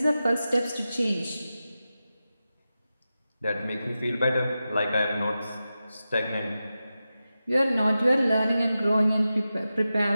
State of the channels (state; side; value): inverted; both; correlation -0.93